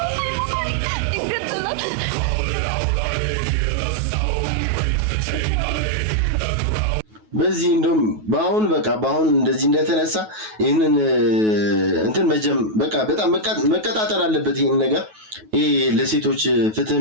በዚህ እንደውም በአሁን እንደዚህ እንደተነሳ ይሄንን እንትን በቃ በጣም መቀጣጠል አለበት። ይሄን ነገር ይሄ ለሴቶች ፍትህ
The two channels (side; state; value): left; late; 9.3 ms